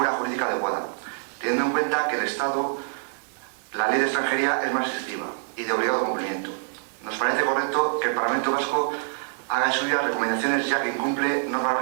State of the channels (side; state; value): left; silent; digital silence